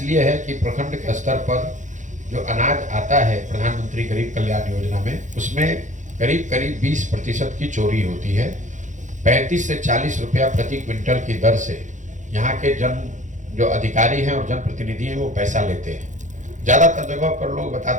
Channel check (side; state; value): left; late; 0.36 ms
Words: है कि प्रखंड के स्तर पर जो अनाज आता है प्रधानमंत्री गरीब कल्याण योजना में, उसमें करीब करीब 20% की चोरी होती है। 35 से 40 रुपया प्रति क्विंटल की दर से यहाँ के जो अधिकारी हैं और जनप्रतिनिधि हैं वो पैसा लेते हैं। ज़्यादातर जगह पर लोग